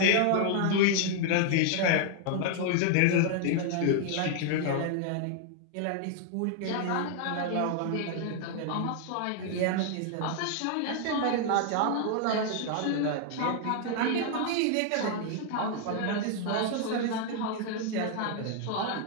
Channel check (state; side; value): different; both; correlation 0.00